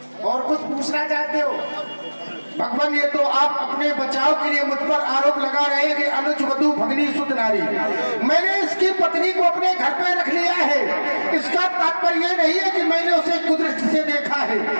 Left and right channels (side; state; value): both; inverted; correlation -1.00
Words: और कुछ पूछना चाहते हो? भगवान, ये तो आप अपने बचाव के लिए मुझ पर आरोप लगा रहे हैं कि अनुज वधु भगनी सुत नारी। मैंने इसकी पत्नी को अपने घर पे रख लिया है, इसका तात्पर्य ये नहीं है कि मैंने उसे कुदृष्टि से देखा है।